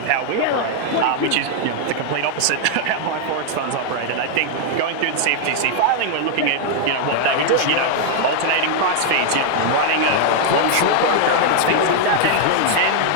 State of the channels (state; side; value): different; both; correlation 0.00